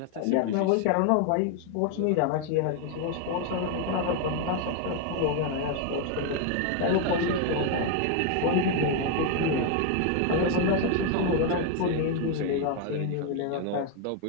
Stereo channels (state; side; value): different; both; correlation 0.01